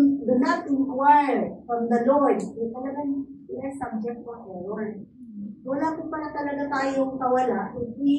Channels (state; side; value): identical; both; correlation 1.00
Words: do not inquire from the Lord, talagang we are subject to error. Wala po pala talaga tayong kawala if